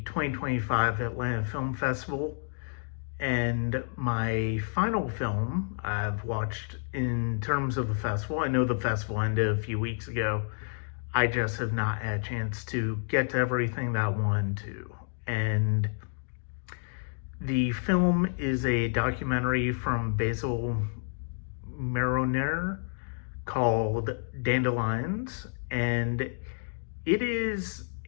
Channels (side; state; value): right; silent; digital silence